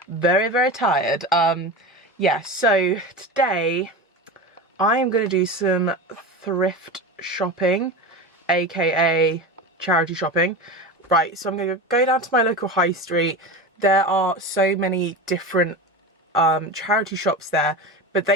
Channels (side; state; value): both; normal; correlation 0.26